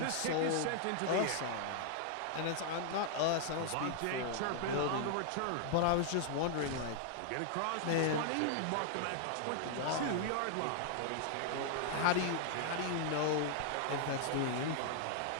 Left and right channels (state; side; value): different; both; correlation 0.00